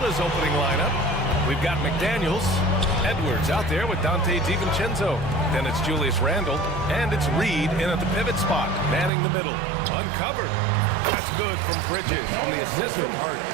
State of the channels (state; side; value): drops out; left; at 9.1 s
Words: opening lineup. We've got McDaniels, Edwards out there with Dante DiVincenzo. Then it's Julius Randle, and it's Reed in at the pivot spot, manning the middle. Uncovered. That's good from Bridges on the assist from Hart.